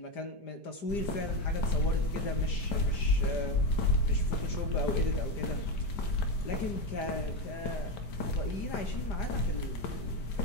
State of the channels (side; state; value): right; late; 5.0 ms